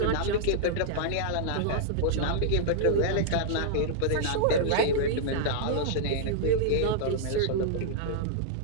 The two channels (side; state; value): both; different; correlation -0.02